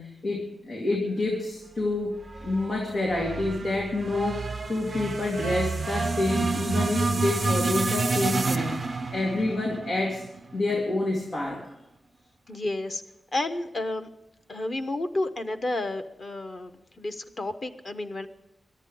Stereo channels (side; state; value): both; normal; correlation 0.88